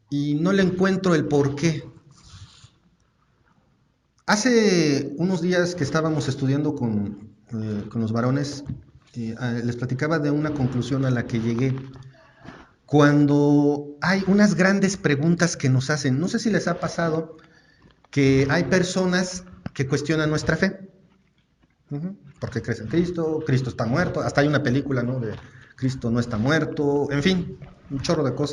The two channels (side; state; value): both; identical; correlation 1.00